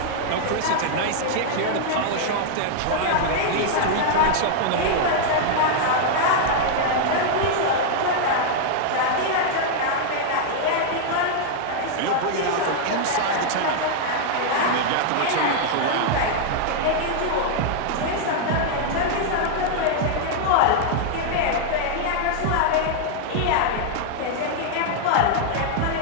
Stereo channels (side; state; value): both; different; correlation 0.00